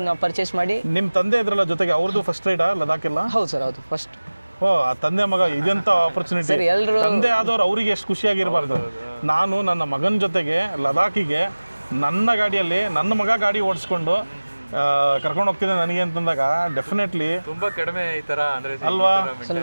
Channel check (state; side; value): inverted; both; correlation -1.00